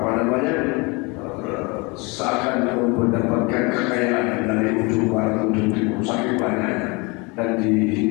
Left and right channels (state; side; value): quieter; right; 27.9 dB